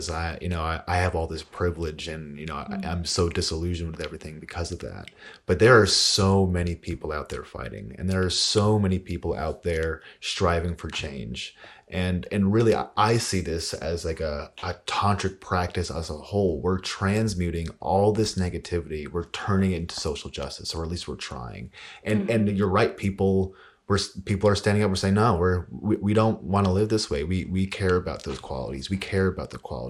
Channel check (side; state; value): both; identical; correlation 1.00